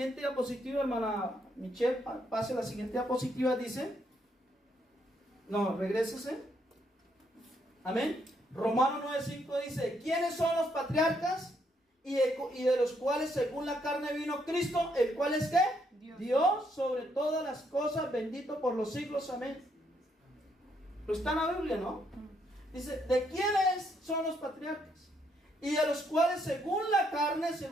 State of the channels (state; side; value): normal; both; correlation 0.74